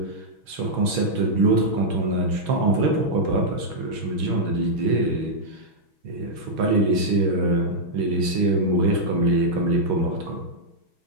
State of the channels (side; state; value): left; late; 6.2 ms